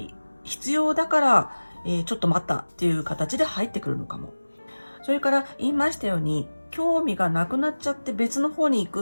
必要だから、ちょっと待ったっていう形で入ってくるのかも。それから言いましたように、興味がなくなっちゃって別の方に行く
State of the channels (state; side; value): inverted; both; correlation -1.00